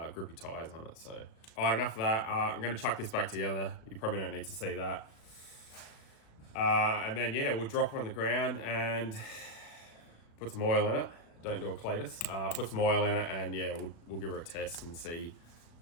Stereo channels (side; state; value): right; late; 36 ms